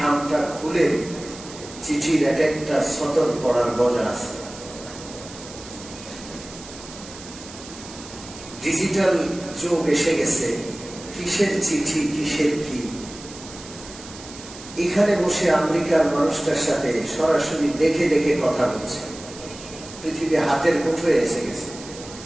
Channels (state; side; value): noise; right; hiss, 16 dB below the sound